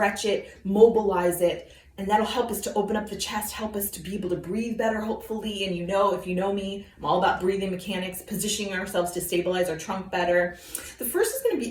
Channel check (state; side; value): identical; both; correlation 1.00